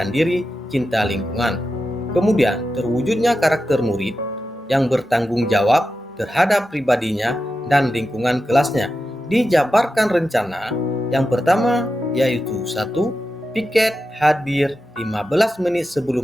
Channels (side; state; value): both; normal; correlation 0.90